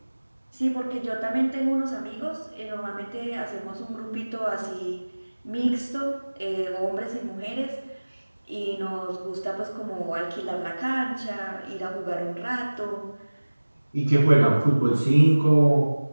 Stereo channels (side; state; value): both; inverted; correlation -1.00